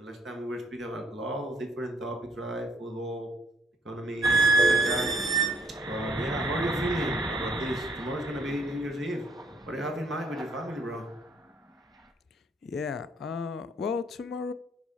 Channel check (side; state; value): both; normal; correlation 0.66